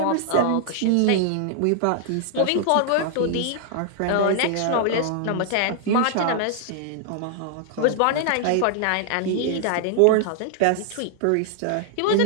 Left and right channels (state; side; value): different; both; correlation -0.01